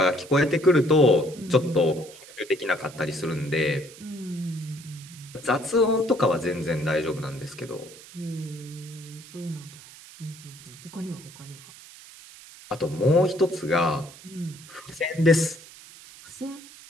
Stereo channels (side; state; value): right; noise; hiss, 19 dB below the sound